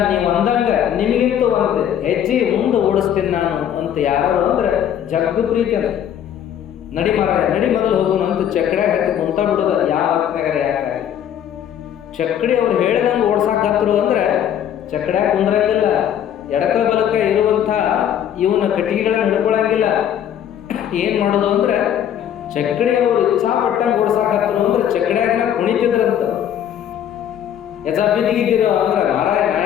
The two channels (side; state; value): right; quieter; 9.9 dB